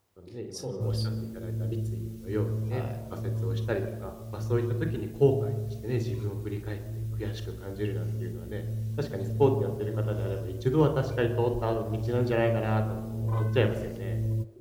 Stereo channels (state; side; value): identical; both; correlation 1.00